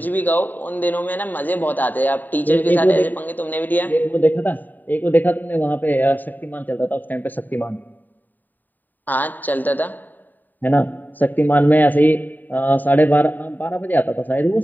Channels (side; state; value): right; late; 0.088 ms